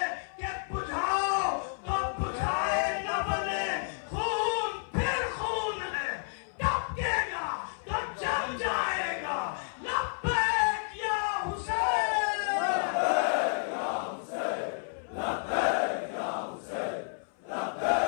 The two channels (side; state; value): right; silent; 57 dB below the other